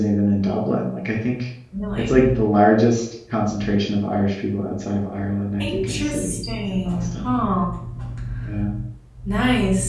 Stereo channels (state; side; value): identical; both; correlation 1.00